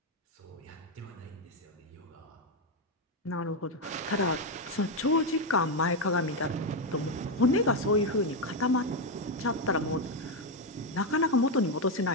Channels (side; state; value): both; normal; correlation 0.06